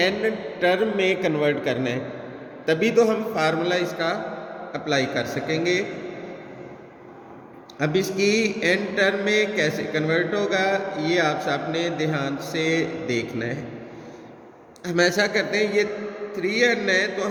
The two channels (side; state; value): both; identical; correlation 1.00